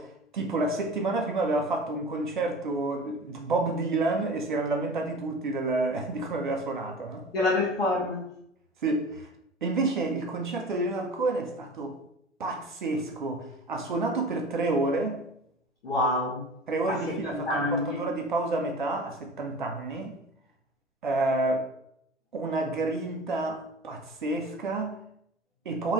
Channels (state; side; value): normal; both; correlation 0.38